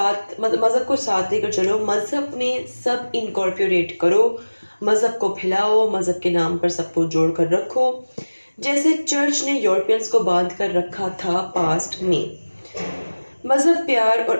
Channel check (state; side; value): inverted; both; correlation -1.00